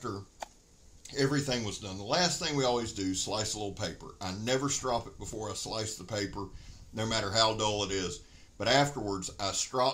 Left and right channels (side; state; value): both; identical; correlation 1.00